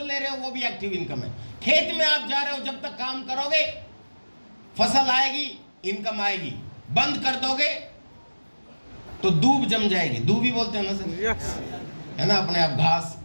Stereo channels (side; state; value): both; inverted; correlation -1.00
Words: ले रहे हो वो भी एक्टिव इनकम है। खेत में आप जा रहे हो, जब तक काम करोगे फसल आएगी, इनकम आएगी। बंद कर दोगे तो दूब जम जाएगी। दूब ही बोलते हैं ना सर? यस। है ना, अपने आप घास